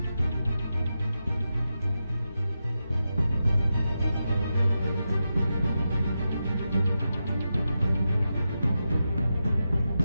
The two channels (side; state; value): both; inverted; correlation -0.89